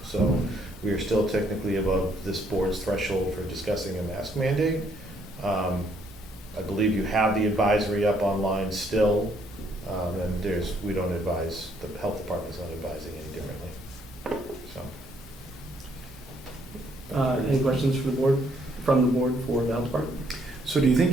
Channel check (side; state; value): both; normal; correlation 0.69